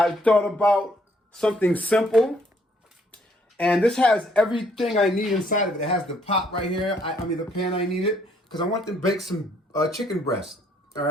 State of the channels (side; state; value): both; normal; correlation 0.66